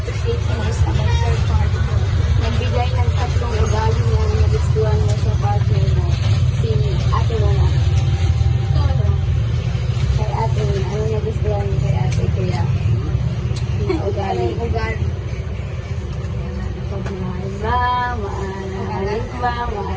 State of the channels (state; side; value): identical; both; correlation 1.00